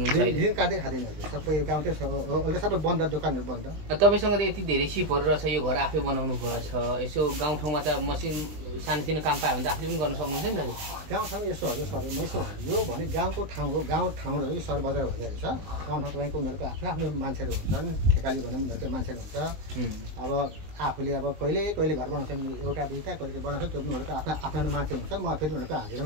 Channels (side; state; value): left; late; 19 ms